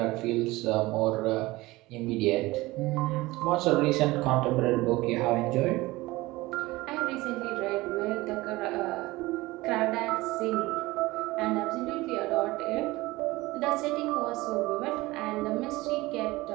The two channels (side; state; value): left; quieter; 20.1 dB